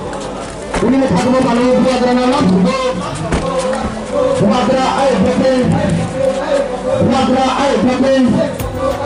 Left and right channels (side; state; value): both; identical; correlation 1.00